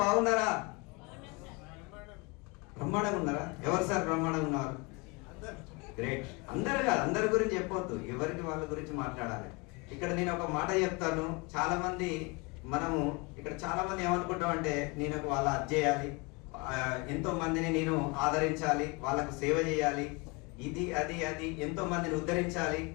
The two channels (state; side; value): quieter; right; 28.1 dB